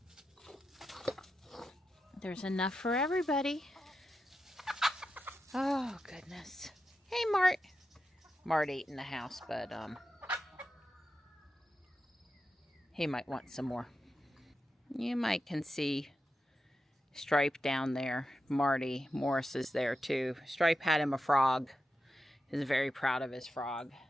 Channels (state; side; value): normal; both; correlation 0.89